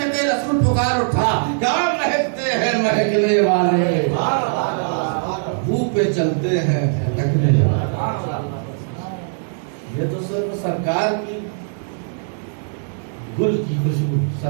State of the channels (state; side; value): silent; left; digital silence